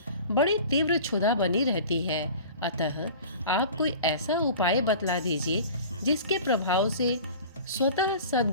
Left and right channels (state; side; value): inverted; both; correlation -0.40